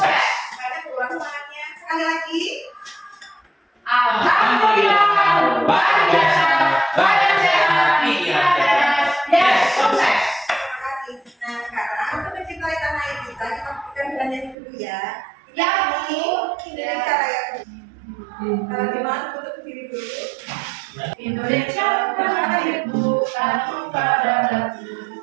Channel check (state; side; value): drops out; left; at 14.6 s